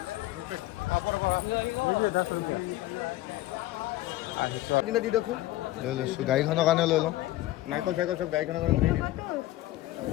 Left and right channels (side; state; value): right; quieter; 16.3 dB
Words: দি দিয়কচোন। লৈ লৈছোঁ গাড়ীখনৰ কাৰণে লৈ লওঁ। নাৰিকল চাৰিকল চব গাড়ীখনৰ কাৰণে দি দিম।